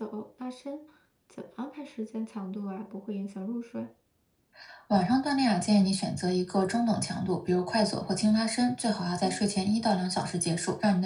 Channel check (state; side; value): identical; both; correlation 1.00